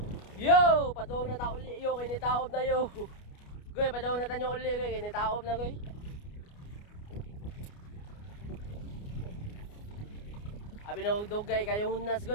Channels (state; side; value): late; right; 29 ms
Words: Yo, padung na ta uli yo kay nitaob na yo. Goy, padung na tanyo uli kay nitaob na goy. Abi na dugay kayo hunas